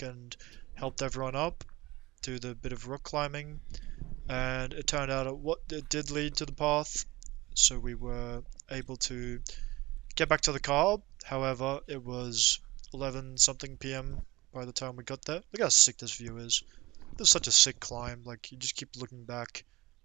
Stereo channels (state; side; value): quieter; left; 20.0 dB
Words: and helped everyone up, do the bit of rock climbing, and it turned out it did lead to the path, so we were able to get back to the car. However, it was 11 something p.m. by the time we got there. Look how sick this view is. This is such a sick climb. Like, you just keep looking back.